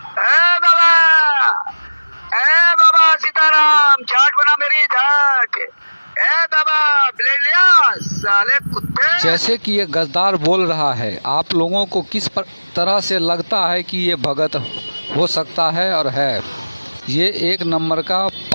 ए बाबा सीताराम, छाट बना मेरी झाट। ए बाबा ब्लेड लिया साले कुत्ते। जैसे कि ये गद्दार बोल रहा है, आप लोगों को किस तरह से लगता है कि ये भगत हो सकता है और है? ये एक नंबर का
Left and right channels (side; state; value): both; inverted; correlation -1.00